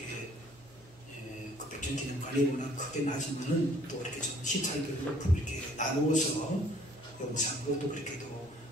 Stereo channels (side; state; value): both; normal; correlation 0.58